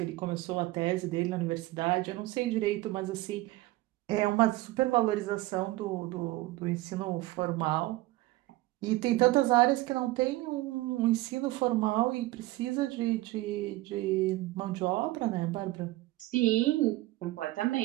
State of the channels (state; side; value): quieter; left; 18.4 dB